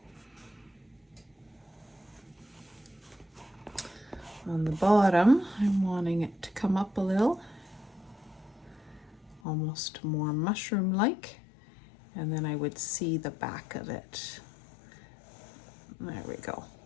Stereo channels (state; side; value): drops out; right; at 9.4 s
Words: On the bottom, I'm wanting it to come up a little, almost more mushroom-like, and then I would see the back of it. There we go,